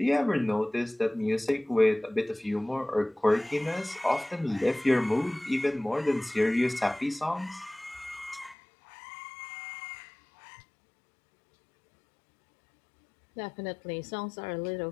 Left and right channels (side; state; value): right; drops out; at 8.6 s